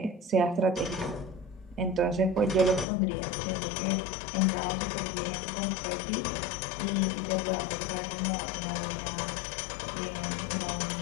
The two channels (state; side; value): drops out; right; at 2.9 s